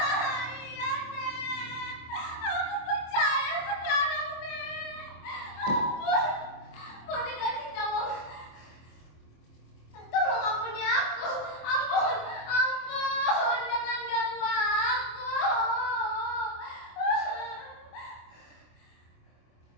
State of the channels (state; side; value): late; right; 26 ms